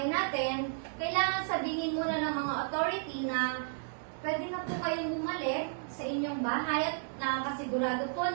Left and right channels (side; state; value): left; silent; digital silence